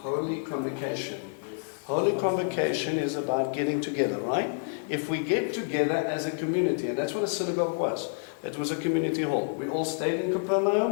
Holy convocation. Holy convocation is about getting together, right? If we get together as a community, and that's what a synagogue was. It was a community hall. We all stayed in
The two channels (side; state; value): right; silent; 59 dB below the other